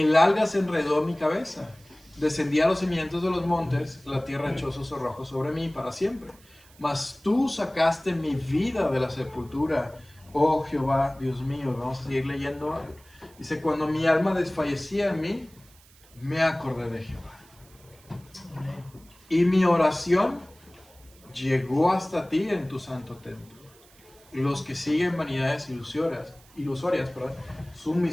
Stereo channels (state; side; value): noise; right; hiss, 27 dB below the sound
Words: alga se enredó en mi cabeza. Descendí a los cimientos de los montes, la tierra echó sus cerrojos sobre mí para siempre. Mas tú sacaste mi vida de la sepultura, oh Jehová, Dios mío. Vamos a seguir leyendo. Dice, cuando mi alma desfallecía en mí, me acordé de Jehová. Y mi oración llegó hasta ti en tu santo templo. Y los que siguen vanidades ilusorias, su